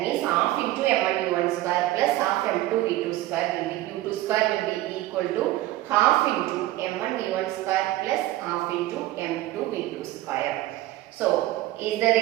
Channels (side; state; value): left; quieter; 16.1 dB